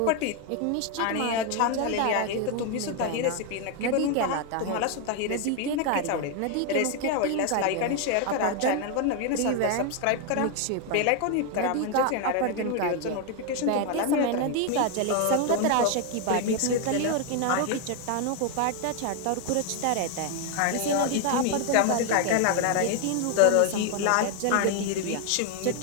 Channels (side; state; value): both; different; correlation 0.01